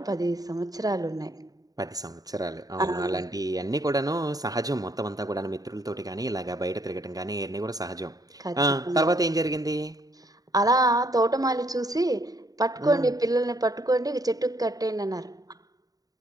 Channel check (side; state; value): left; late; 0.18 ms